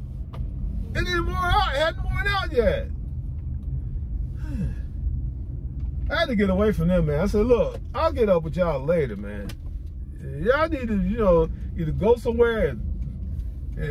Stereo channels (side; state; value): both; identical; correlation 1.00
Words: It didn't worn out, it hadn't worn out yet. I had to get away from them, man. I said, look, I'll get up with y'all later, man. Y'all need to, you know, either go somewhere